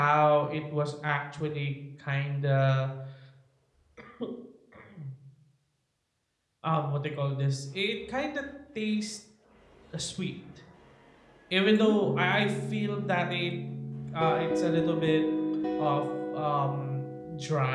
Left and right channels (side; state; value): both; identical; correlation 1.00